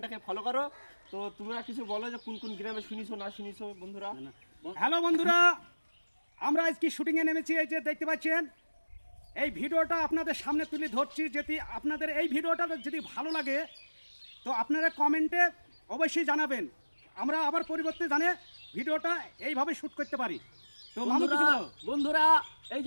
ফলো করো। তো তোমরা কিছু বলো যে কোন কোন গ্রামে শুনিছো না শুনিছো বন্ধুরা। হ্যালো বন্ধুরা, আমরা আজকে শুটিংয়ে নেমেছি। এই যে দেখতে পাচ্ছেন, এই ভিডিওটা আপনাদের সামনে তুলে ধরছি। যদি আপনাদের এই ভিডিওটা যদি ভালো লাগে তো আপনারা কমেন্টে অবশ্যই জানাবেন। আমরা আবার পরিবর্তে জানে ভিডিওটা এইভাবে শ্যুট করতে পারি। তো মামু কিছু বলো। বন্ধুরা, এই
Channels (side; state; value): both; inverted; correlation -1.00